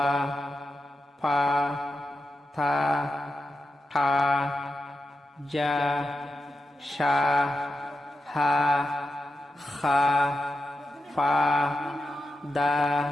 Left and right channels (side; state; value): both; normal; correlation 0.89